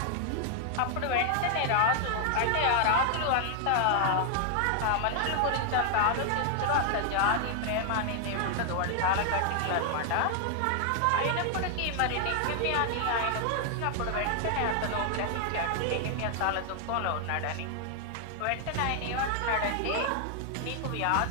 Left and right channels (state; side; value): different; both; correlation 0.00